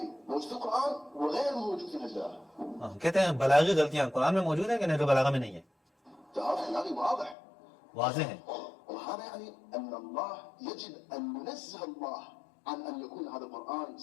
موجود في القرآن وغير موجود في الإسلام. کہتے ہیں بلاغی غلطیاں قرآن میں موجود ہیں کہ نہج البلاغہ میں نہیں ہے. تهافت بلاغي واضح. واضح ہے. وهذا يعني أن الله يجب أن ينزه الله عن أن يكون هذا القرآن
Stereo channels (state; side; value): drops out; right; at 7.4 s